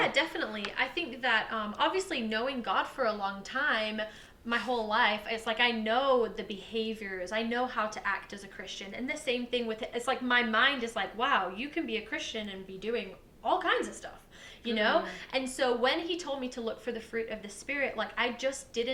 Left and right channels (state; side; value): identical; both; correlation 1.00